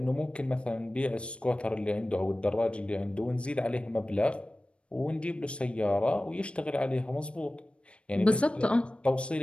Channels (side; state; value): right; late; 0.059 ms